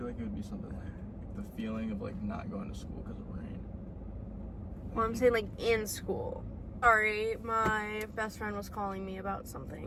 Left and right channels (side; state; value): both; identical; correlation 1.00